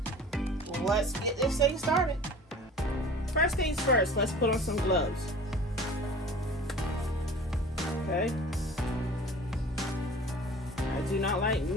Let's get this thing started. First things first, let's put on some gloves. Okay. I do not like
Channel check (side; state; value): both; normal; correlation 0.43